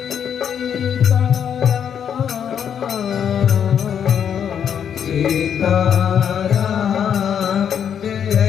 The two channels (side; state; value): right; quieter; 8.4 dB